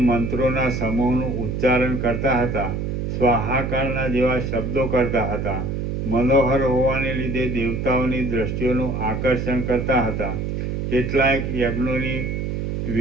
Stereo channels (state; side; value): noise; right; hum, 2 dB below the sound